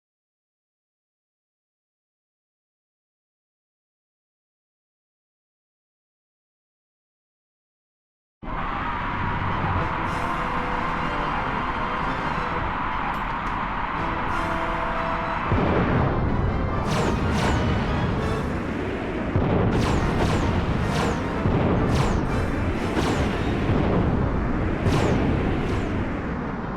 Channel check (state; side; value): identical; both; correlation 1.00